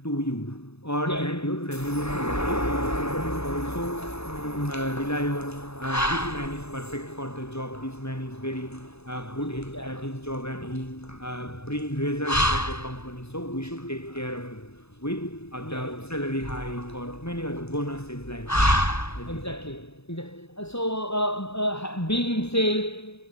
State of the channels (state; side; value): late; right; 0.79 ms